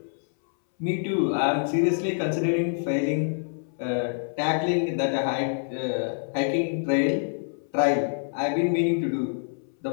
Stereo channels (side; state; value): right; silent; 61 dB below the other